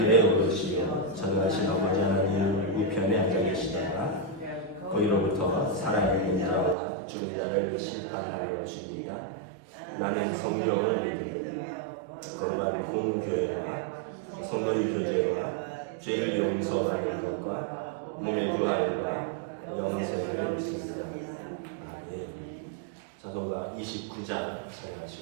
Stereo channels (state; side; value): drops out; left; at 6.8 s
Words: 오르시어 전능하신 아버지 하나님 우편에 앉아 계시다가 거기로부터 살아있는 자와 죽은 자를 심판하러 오십니다. 나는 성령을 믿으며 거룩한 공교회와 성도의 교제와 죄를 용서하는 것과 몸의 부활과 영생을 믿습니다. 찬송가 29장